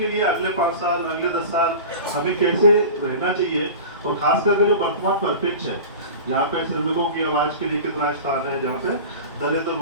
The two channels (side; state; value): both; inverted; correlation -0.33